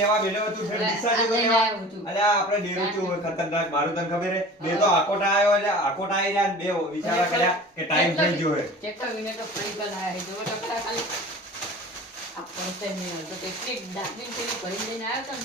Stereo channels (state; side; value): normal; both; correlation 0.40